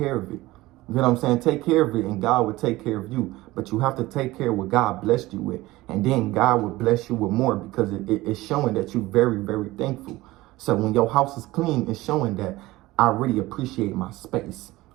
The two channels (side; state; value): left; quieter; 18.7 dB